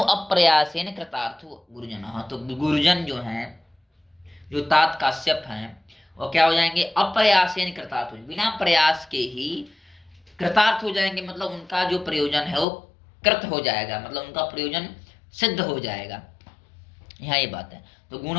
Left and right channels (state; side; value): drops out; right; at 12.7 s